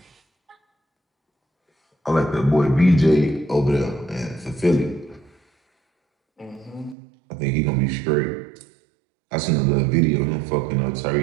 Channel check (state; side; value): drops out; left; at 7.0 s